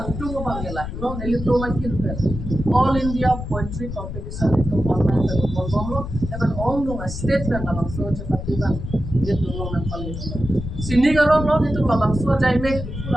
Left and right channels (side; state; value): left; noise; rumble, 7 dB below the sound